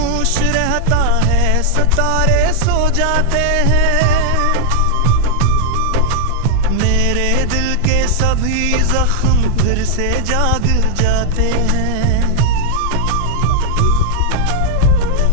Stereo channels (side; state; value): both; different; correlation 0.00